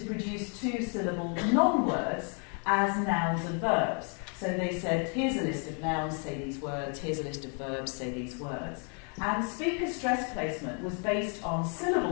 produce two-syllable non-words as nouns and verbs. So they said, here's a list of nouns, say these words, here's a list of verbs, say these words. And speaker stress placement was based on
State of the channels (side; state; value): right; quieter; 39.4 dB